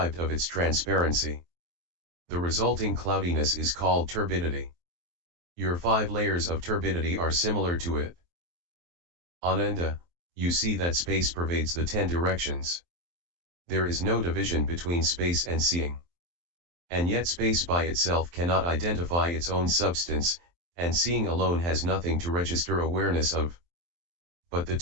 of its transparency. The resulting cloudiness is called turbidity. Your 5 layers of turbidity are similar to it. Ananda, you see that space pervades the 10 directions. There is no division between space and seeing. And yet space by itself cannot identify its own substance, and seeing alone has nothing to register awareness of. But the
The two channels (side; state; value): left; late; 23 ms